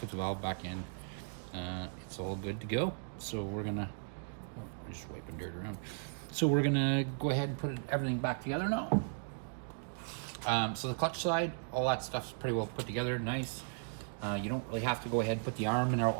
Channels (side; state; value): left; silent; digital silence